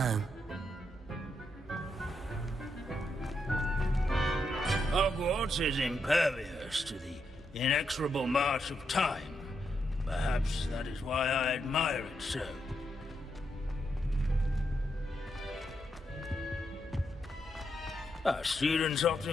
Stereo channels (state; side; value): normal; both; correlation 0.81